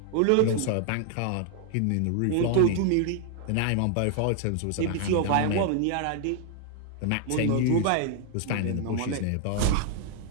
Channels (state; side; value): different; both; correlation 0.00